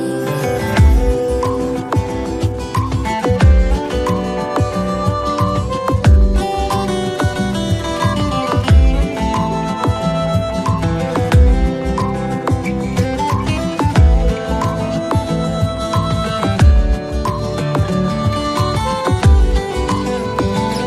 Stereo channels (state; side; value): identical; both; correlation 1.00